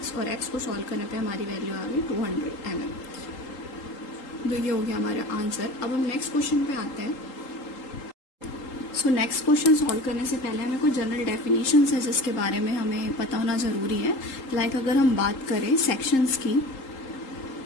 और x को सॉल्व करने पे हमारी वैल्यू आ गई 200 mm। तो ये हो गया हमारा आंसर। अब हम नेक्स्ट क्वेश्चन पे आते हैं। सो नेक्स्ट क्वेश्चन सॉल्व करने से पहले हमें कुछ जनरल डेफिनेशंस है जिसके बारे में हमें पता होना ज़रूरी है। लाइक अगर हम बात करें सेक्शंस की,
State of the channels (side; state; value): right; late; 3.8 ms